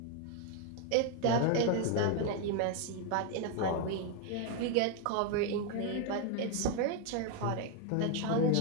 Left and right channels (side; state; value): both; different; correlation 0.01